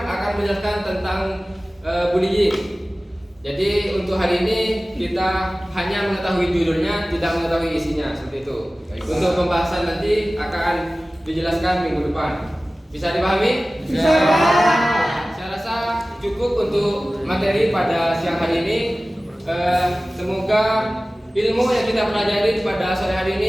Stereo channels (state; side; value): normal; both; correlation 0.97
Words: akan menjelaskan tentang bullying. Jadi untuk hari ini kita hanya mengetahui judulnya, tidak mengetahui isinya, seperti itu. Untuk pembahasan nanti akan dijelaskan minggu depan. Bisa dipahami? Bisa. Saya rasa cukup untuk materi pada siang hari ini. Semoga ilmu yang kita pelajari pada sore hari